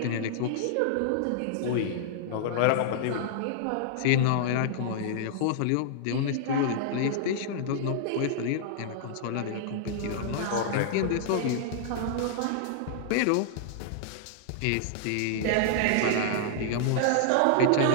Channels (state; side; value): different; both; correlation -0.01